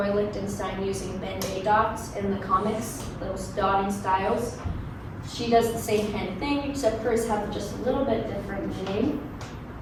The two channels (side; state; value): both; identical; correlation 1.00